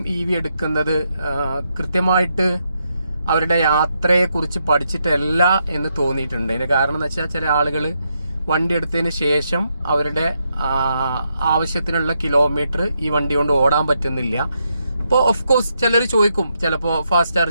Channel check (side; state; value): both; inverted; correlation -0.81